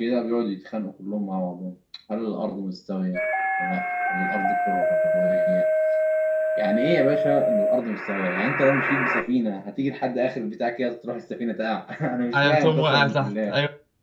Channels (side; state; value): both; identical; correlation 1.00